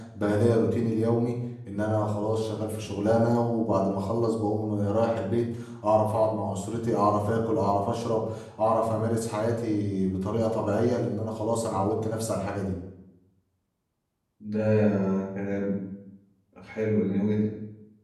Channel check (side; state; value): both; identical; correlation 1.00